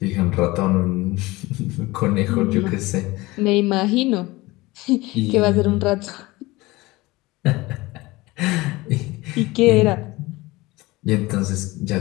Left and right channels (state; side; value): quieter; right; 20.9 dB